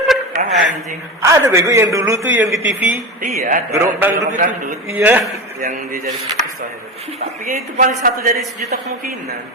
Anjing. Ada bego yang dulu tuh yang di TV. Iya, ada. Gerobak dangdut itu. dangdut. Iya. Yang dia jadi sukses itu. Tapi ya itu paling satu dari sejuta kemungkinan.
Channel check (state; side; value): normal; both; correlation 0.23